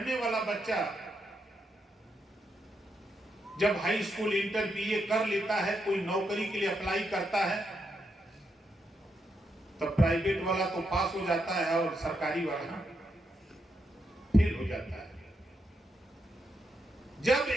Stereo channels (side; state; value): both; normal; correlation 0.82